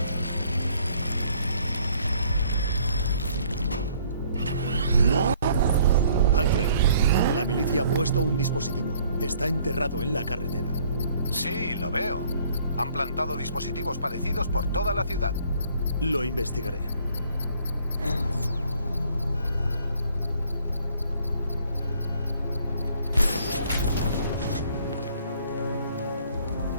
La milicia ha puesto un dispositivo. Está enterrado en la carretera. Sí, lo veo. Han plantado dispositivos parecidos por toda la ciudad. Lo investigaré.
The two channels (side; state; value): both; inverted; correlation -0.61